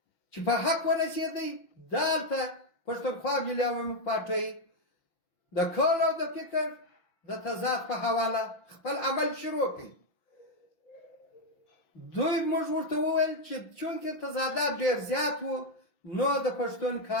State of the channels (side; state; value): right; late; 6.0 ms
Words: چې په حق ورسېدی دلته پښتونخوا ملي عوامي پارټۍ د کول او د فکر د تضاد په حواله خپل عمل شروع کړي. دوی موږ ورته وویل چې چونکې تضادات ډېر زیات وو نو د پښتون